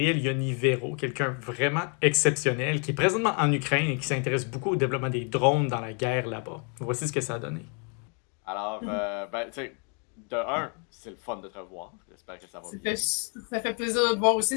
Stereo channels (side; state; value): right; quieter; 38.9 dB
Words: Yonivero, quelqu'un vraiment exceptionnel qui est présentement en Ukraine et qui s'intéresse beaucoup au développement des drones dans la guerre là-bas. Voici ce que ça a donné. Alors, ben, tu sais, de un, c'est le fun de te revoir. J'espère que ça va bien. Ça fait plaisir de te voir